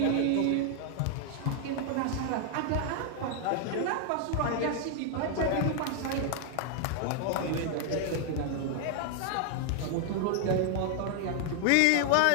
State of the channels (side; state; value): both; different; correlation 0.00